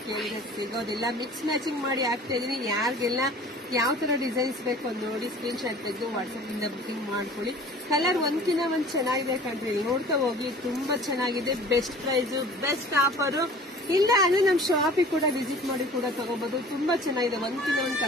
ಕೇಳಿದ್ರೆ ಸಿಗೋದಿಲ್ಲ. ಮಿಕ್ಸ್ ಮ್ಯಾಚಿಂಗ್ ಮಾಡಿ ಹಾಕ್ತಾ ಇದೀನಿ. ಯಾರಿಗೆಲ್ಲ ಯಾವ ತರ ಡಿಸೈನ್ಸ್ ಬೇಕು ನೋಡಿ ಸ್ಕ್ರೀನ್ ಶಾಟ್ ತೆಗೆದು ವಾಟ್ಸ್ಆಪ್ ಇಂದ ಬುಕಿಂಗ್ ಮಾಡ್ಕೊಳ್ಳಿ. ಕಲರ್ ಒಂದ್ಕಿಂತ ಒಂದ್ ಚೆನ್ನಾಗಿದೆ ಕಣ್ರಿ, ನೋಡ್ತಾ ಹೋಗಿ. ತುಂಬಾ ಚೆನ್ನಾಗಿದೆ, ಬೆಸ್ಟ್ ಪ್ರೈಸ್, ಬೆಸ್ಟ್ ಆಫರ್. ಇಲ್ಲ ಅಂದ್ರೆ ನಮ್ಮ ಶಾಪಿಗೆ ಕೂಡ ವಿಸಿಟ್ ಮಾಡಿ ಕೂಡ ತಗೋಬಹುದು. ತುಂಬಾ ಚೆನ್ನಾಗಿದೆ, ಒಂದ್ಕಿಂತ ಒಂದು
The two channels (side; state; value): both; normal; correlation 0.45